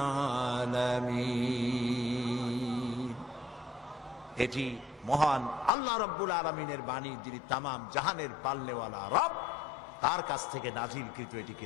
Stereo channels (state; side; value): drops out; right; at 5.7 s